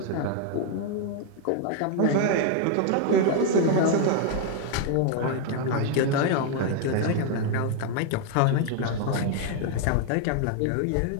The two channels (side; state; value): both; different; correlation 0.00